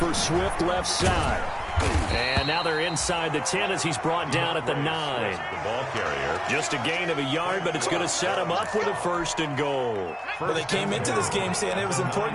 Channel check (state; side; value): identical; both; correlation 1.00